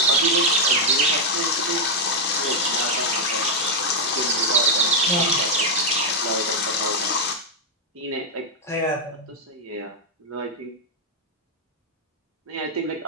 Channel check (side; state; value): both; normal; correlation -0.01